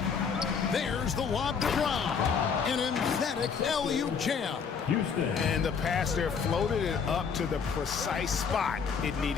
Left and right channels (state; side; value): quieter; right; 6.2 dB